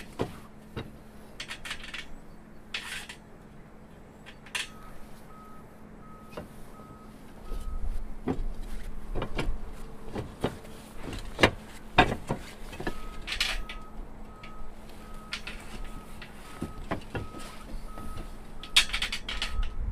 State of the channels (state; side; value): identical; both; correlation 1.00